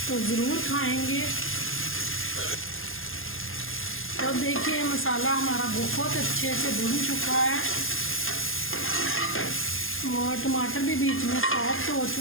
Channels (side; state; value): right; late; 0.60 ms